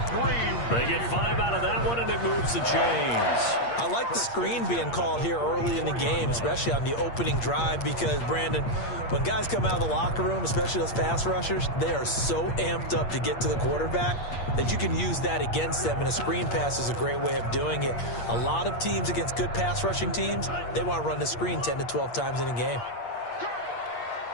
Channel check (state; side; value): late; right; 8.5 ms